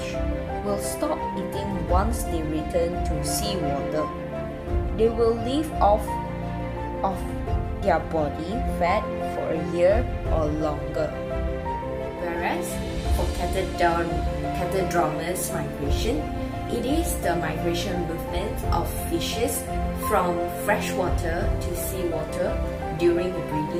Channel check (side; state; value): both; identical; correlation 1.00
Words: will stop eating once they return to seawater. They will live off their body fat for a year or longer. Whereas for catadromous migration, it is the migration movement of fishes from freshwater to seawater during